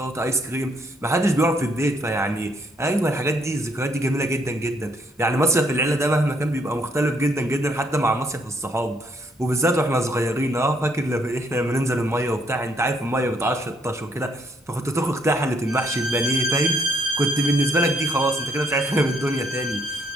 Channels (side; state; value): both; normal; correlation 0.70